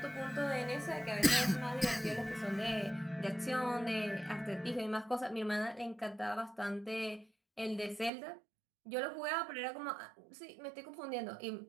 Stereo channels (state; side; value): drops out; left; at 8.1 s